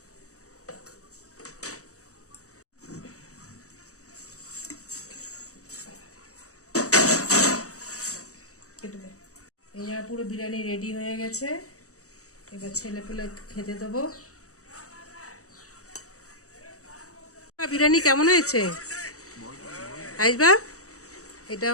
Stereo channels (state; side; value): late; right; 0.65 ms